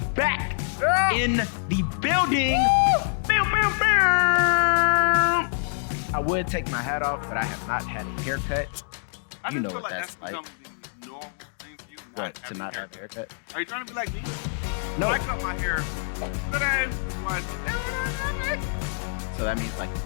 back in the building. I would take my hat off, but I have not had a haircut. I You know feel what like that's like. becoming the normal thing for you, What, not to not have a haircut? Are you trying to be like me? No. I cut my hair today. That's why it's so aerodynamic. So that means like you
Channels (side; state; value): right; silent; digital silence